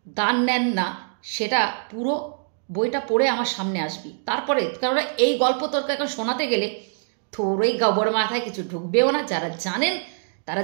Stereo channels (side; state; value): left; silent; digital silence